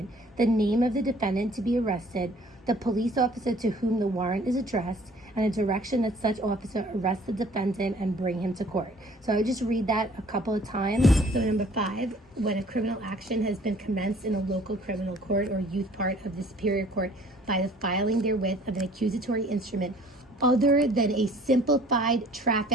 the name of the defendant to be arrested, the police officer to whom the warrant is addressed, and a direction that such officer arrest the defendant and bring him to court. So I would just read that a couple of times. So number 5, when a criminal action has been commenced in a local criminal court or youth part of the superior court by the filing therewith of an accusatory instrument other than a simplified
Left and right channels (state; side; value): normal; both; correlation 0.54